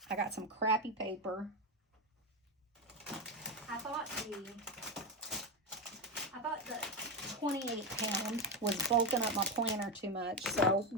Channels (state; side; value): normal; both; correlation 0.12